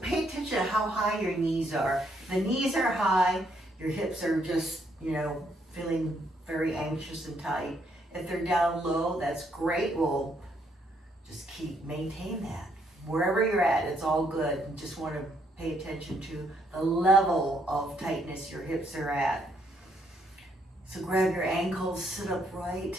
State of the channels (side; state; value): both; normal; correlation 0.72